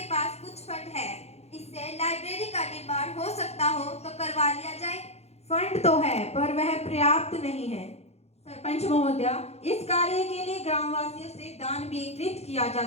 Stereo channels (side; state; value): right; late; 0.31 ms